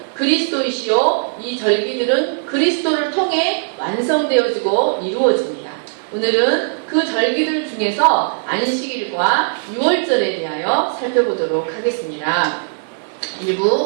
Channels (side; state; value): left; silent; digital silence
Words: 그리스도이시요 이 절기들은 그리스도를 통해 완성되어지고 이루어집니다. 오늘은 그 절기들 중에서 안식일과 유월절에 대하여 살펴보도록 하겠습니다.